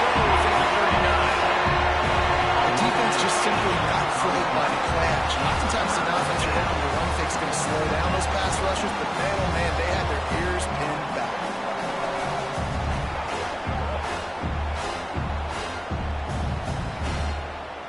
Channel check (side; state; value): both; identical; correlation 1.00